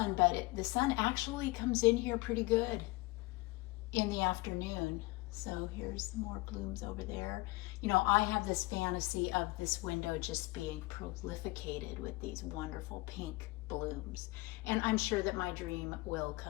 but the sun actually comes in here pretty good in the afternoon. So here's more blooms over there. I have this fantasy of this window just being prolificated with these wonderful pink blooms. And I'm sure that my dream will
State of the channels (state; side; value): quieter; right; 21.7 dB